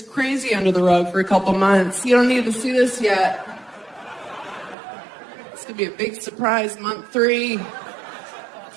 crazy under the rug for a couple months. You don't need to see this yet. It's gonna be a big surprise, month 3.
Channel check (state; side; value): drops out; left; at 4.8 s